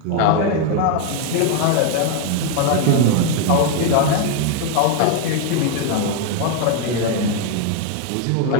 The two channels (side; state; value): both; different; correlation 0.01